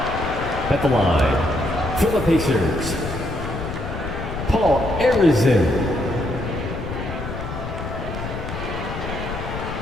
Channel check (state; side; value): noise; left; rumble, 7 dB below the sound